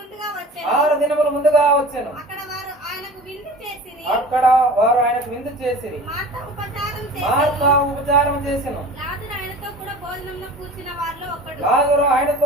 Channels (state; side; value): normal; both; correlation 0.40